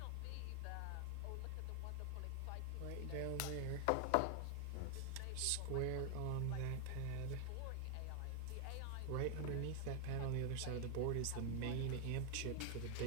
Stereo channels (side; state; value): both; different; correlation 0.00